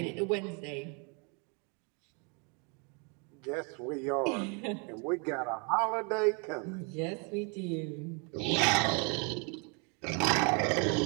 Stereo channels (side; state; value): left; quieter; 34.9 dB